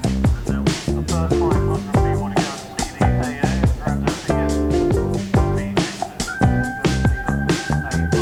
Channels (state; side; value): identical; both; correlation 1.00